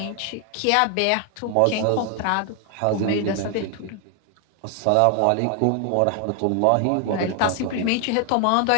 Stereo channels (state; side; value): different; both; correlation 0.00